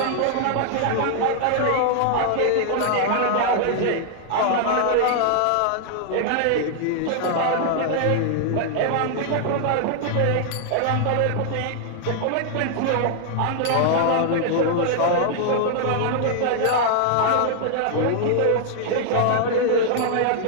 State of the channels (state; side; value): different; both; correlation 0.00